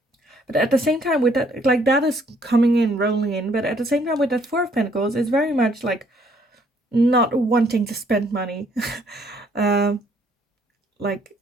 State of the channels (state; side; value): normal; both; correlation 0.65